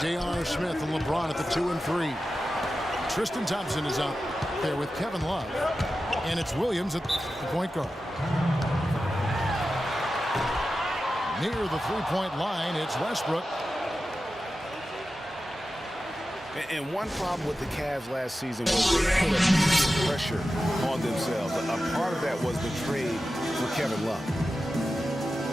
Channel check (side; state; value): both; normal; correlation 0.93